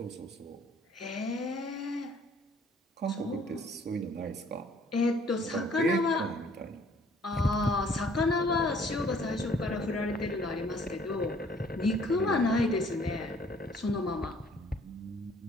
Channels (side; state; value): both; normal; correlation 0.59